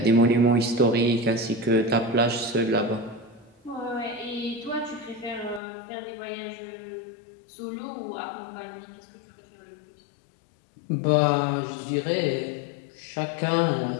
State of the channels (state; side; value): drops out; right; at 5.6 s